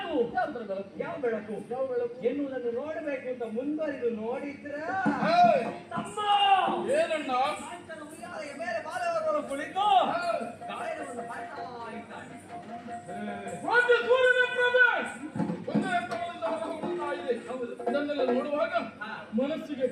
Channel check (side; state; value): both; identical; correlation 1.00